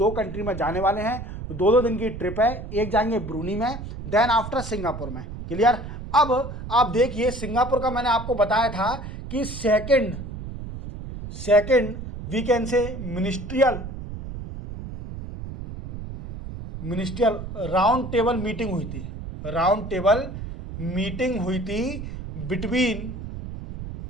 कंट्री में जाने वाले हैं। 2 दिन की ट्रिप है, एक जाएंगे ब्रूनी में, देन आफ्टर सिंगापुर में। क्लियर? अब आप देखिए, सिंगापुर का मैंने आपको बताया था कि second we can say ministerial round table meeting हुई थी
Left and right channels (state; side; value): noise; right; rumble, 9 dB below the sound